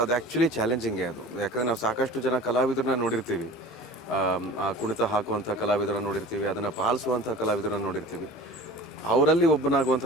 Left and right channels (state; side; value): normal; both; correlation 0.40